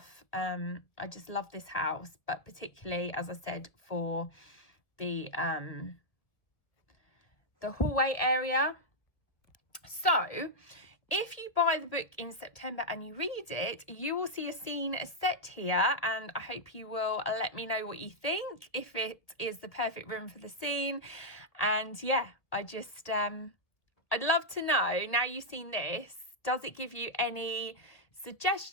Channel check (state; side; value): late; right; 1.5 ms